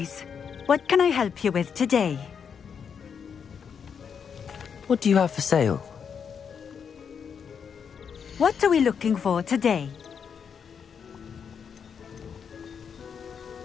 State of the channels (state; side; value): quieter; right; 7.0 dB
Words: What can I help you with today? What do you have for sale? What are we looking for today?